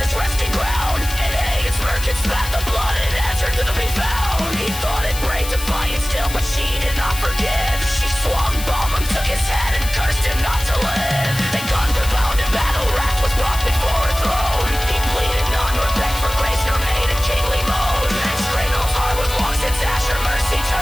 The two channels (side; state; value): left; noise; hiss, 9 dB below the sound